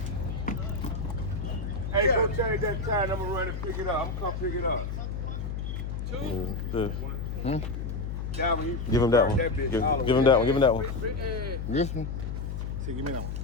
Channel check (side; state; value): left; noise; hum, 4 dB below the sound